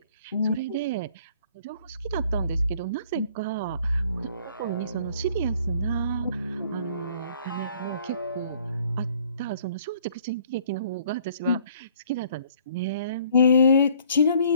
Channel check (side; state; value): both; inverted; correlation -0.58